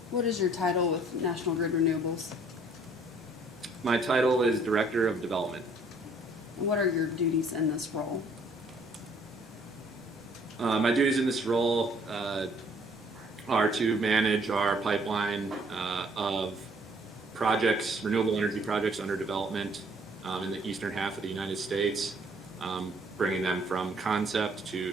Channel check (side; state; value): both; normal; correlation 0.60